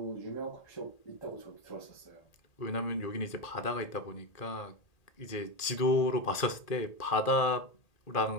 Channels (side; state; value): right; late; 1.8 ms